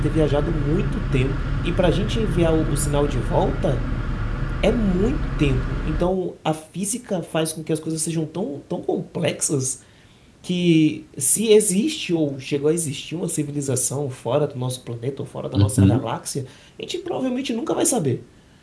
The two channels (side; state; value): both; identical; correlation 1.00